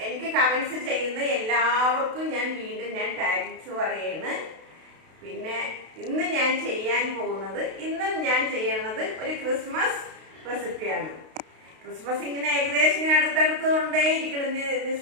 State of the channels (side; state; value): left; late; 32 ms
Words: എനിക്ക് കമൻസ് ചെയ്യുന്ന എല്ലാവർക്കും ഞാൻ വീണ്ടും താങ്ക്സ് പറയുന്നു. പിന്നെ ഇന്ന് ഞാൻ ചെയ്യാൻ പോകുന്നത് ഒരു ക്രിസ്മസ് റെസിപ്പിയാണ്. ക്രിസ്മസ് ഇങ്ങനെ ഏകദേശം ഇങ്ങനെ അടുത്തടുത്തുകൊണ്ടേ ഇരിക്കണം,